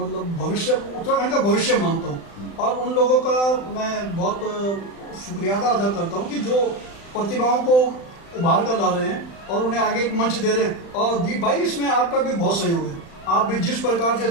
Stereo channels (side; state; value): right; late; 35 ms